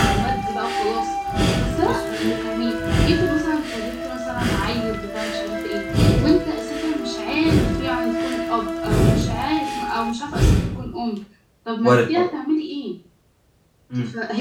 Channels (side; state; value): both; identical; correlation 1.00